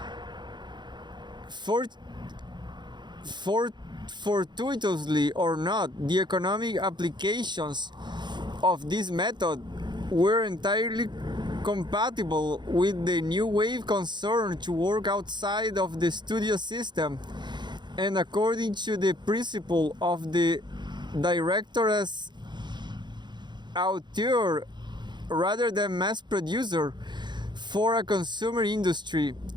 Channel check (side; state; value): left; late; 0.21 ms